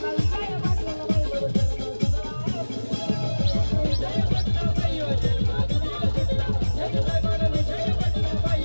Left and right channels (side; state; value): both; inverted; correlation -1.00